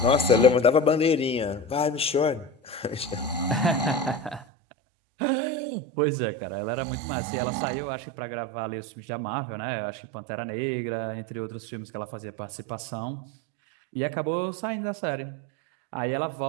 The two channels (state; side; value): drops out; left; at 4.5 s